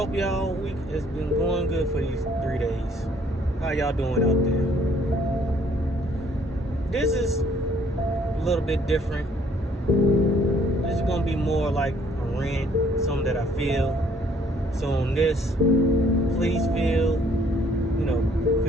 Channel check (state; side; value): normal; both; correlation 0.62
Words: y'all week has been going good for these 3 days. How y'all doing out there? This is a little bit different. This is gonna be more like a rant, something that I feel. So on this, please feel